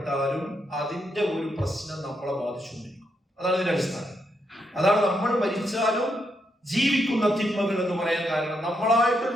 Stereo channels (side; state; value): both; normal; correlation 0.80